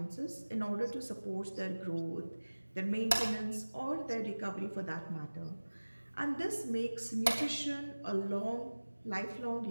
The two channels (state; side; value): inverted; both; correlation -1.00